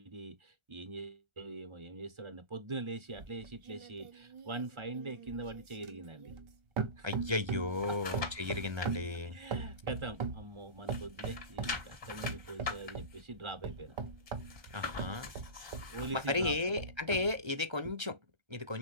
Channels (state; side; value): late; left; 1.3 ms